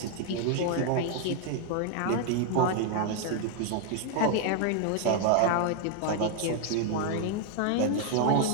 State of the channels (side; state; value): both; different; correlation 0.00